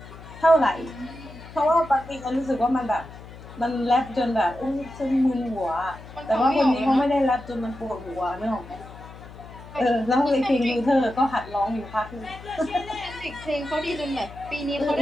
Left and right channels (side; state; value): left; noise; hum, 16 dB below the sound